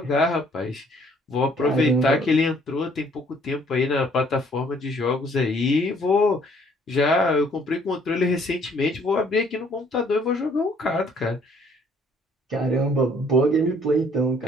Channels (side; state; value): both; normal; correlation 0.61